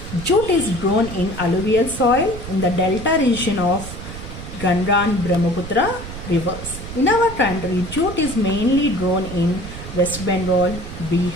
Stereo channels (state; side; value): noise; right; rumble, 10 dB below the sound